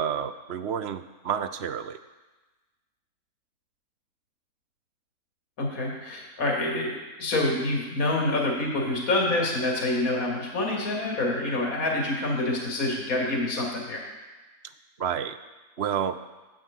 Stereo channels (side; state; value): right; late; 4.2 ms